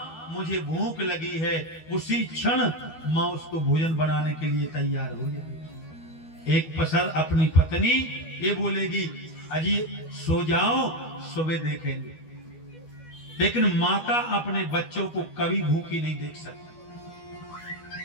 मुझे भूख लगी है, उसी क्षण माँ उसको भोजन बनाने के लिए तैयार हो जाएगी। एक पसर अपनी पत्नी ये बोलेगी अजी सो जाओ, सुबह देखेंगे। लेकिन माता अपने बच्चों को कभी भूखी नहीं देख सकती।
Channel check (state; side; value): late; right; 12 ms